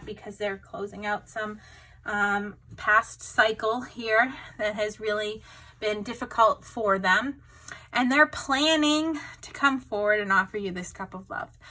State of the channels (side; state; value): both; identical; correlation 1.00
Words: because they're closing out some past cycle here that has really been difficult for them. And they're planning to come forward and offer you this cup of love.